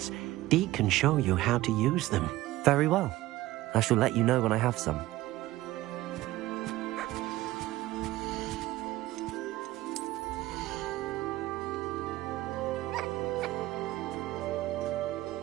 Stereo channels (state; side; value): quieter; left; 16.9 dB